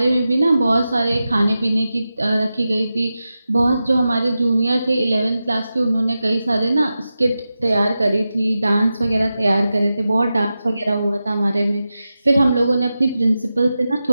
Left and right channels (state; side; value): inverted; both; correlation -0.92